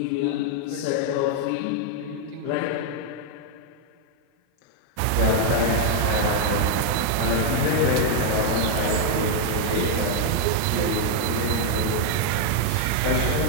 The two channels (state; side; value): different; both; correlation 0.00